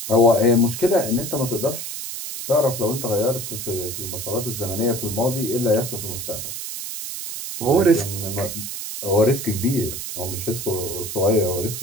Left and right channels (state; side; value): noise; right; hiss, 6 dB below the sound